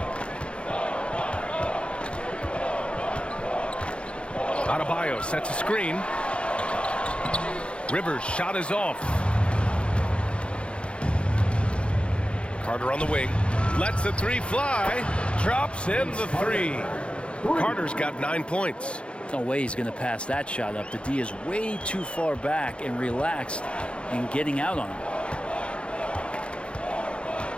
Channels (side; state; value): right; late; 0.058 ms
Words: Adebayo sets a screen. Rivers' shot is off. Carter on the wing. Lets the 3 fly. Drops in the 3. Carter's got 9 points. No way he's going to pass that shot up. The D is way too far back and relaxed in getting out on him.